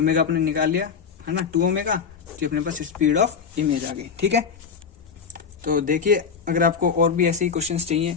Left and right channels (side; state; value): right; quieter; 6.2 dB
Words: अपने निकाल लिया, है ना, 2 ओमेगा, तो अपने पास स्पीड ऑफ इमेज आ गई, ठीक है। तो देखिए अगर आपको और भी ऐसे ही क्वेश्चंस चाहिए,